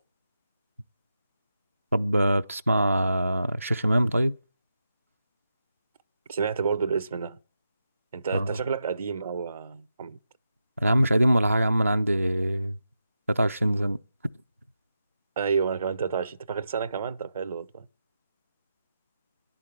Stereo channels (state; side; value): inverted; both; correlation -0.88